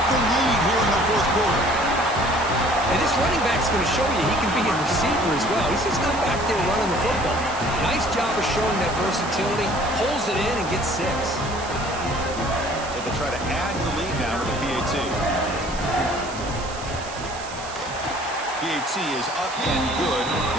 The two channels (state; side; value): noise; right; hiss, 14 dB below the sound